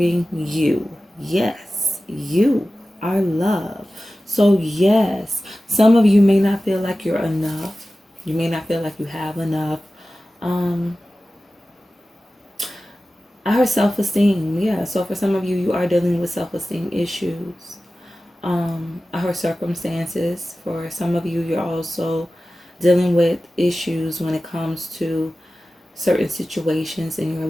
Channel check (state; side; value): normal; both; correlation 0.95